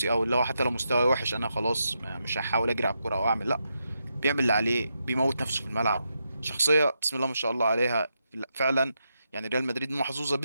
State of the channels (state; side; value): inverted; both; correlation -0.84